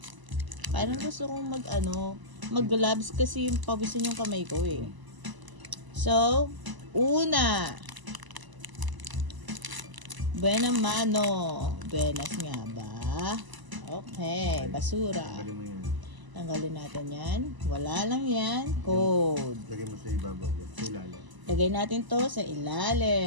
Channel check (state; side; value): late; left; 1.0 ms